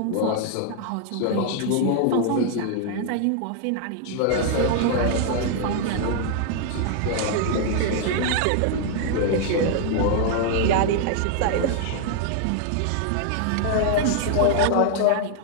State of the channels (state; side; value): different; both; correlation 0.00